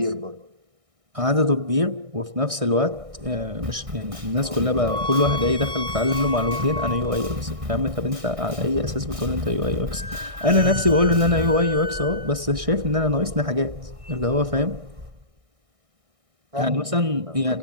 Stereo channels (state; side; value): late; left; 1.6 ms